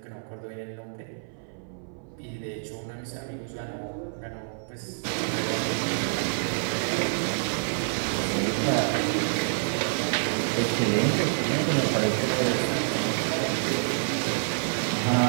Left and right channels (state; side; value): silent; left; 57 dB below the other